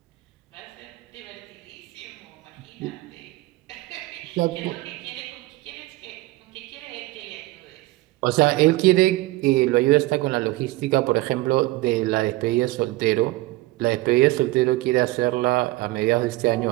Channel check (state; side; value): quieter; left; 19.4 dB